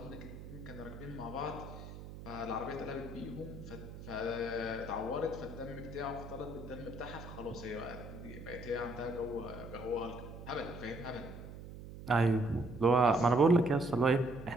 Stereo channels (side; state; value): right; noise; hum, 12 dB below the sound